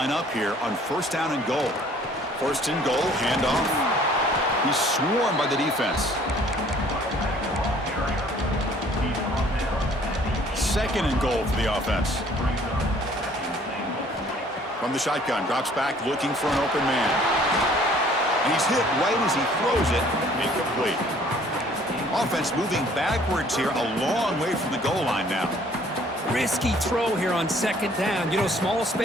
up here on first down and goal. First and goal, handoff. He's swarmed by the defense. Second and goal for the offense. From the shotgun, drops back looking for an open man. And he's hit right as he throws it. Incomplete. Offense moving backwards here, a long way from the goal line now. Risky throw here on 2nd down. You know, small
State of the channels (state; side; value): normal; both; correlation 0.57